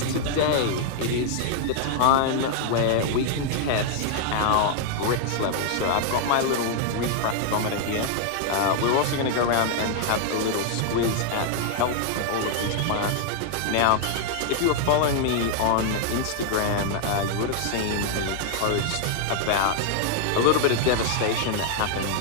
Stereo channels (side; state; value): both; different; correlation 0.00